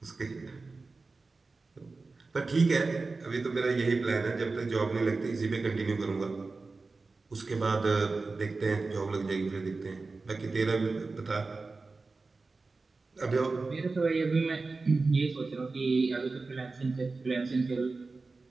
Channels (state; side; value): quieter; left; 3.8 dB